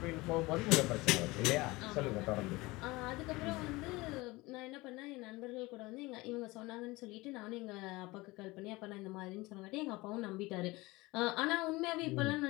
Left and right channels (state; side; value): quieter; right; 21.8 dB